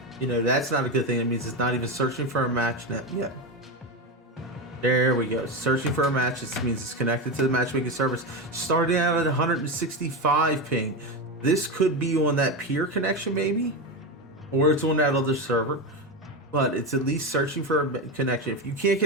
that's not a good thing. It means it's not even searching for a match net yet. There we go. Searching for a match. This means it's connected to the matchmaking service. Starting out at 165 ping. This could be on that peer connection maybe, or it's on that other server. But it's at least searching for a connection. If you can't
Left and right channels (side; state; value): both; normal; correlation 0.16